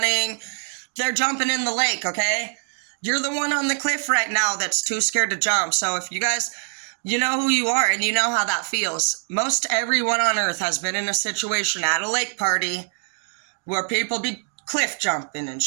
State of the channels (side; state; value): left; silent; 58 dB below the other